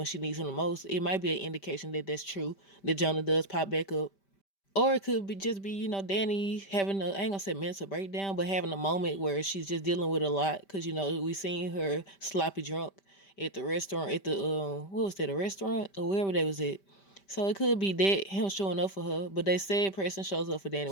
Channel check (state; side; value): late; right; 5.1 ms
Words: she needs him the most, it might be an indication that that's true, that Jonah does pop back up. Or it could be just be, Danny having I ain't gonna say mental breakdown, but having a moment where she's just dealing with a lot. Cause we seen her sloppy drunk at the restaurant, at the what was that, a restaurant or wherever they was at. So it could be that him showing up for her, but they said Preston shows up for Danny